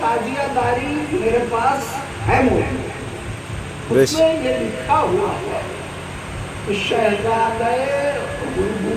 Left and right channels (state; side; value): identical; both; correlation 1.00